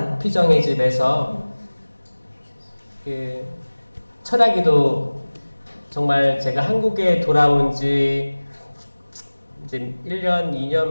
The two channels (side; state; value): both; inverted; correlation -1.00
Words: 피정의 집에서 철학기도 정말 제가 한국에 돌아온 지 이제 1년, 2년